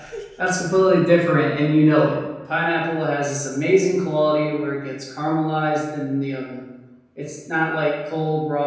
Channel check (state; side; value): identical; both; correlation 1.00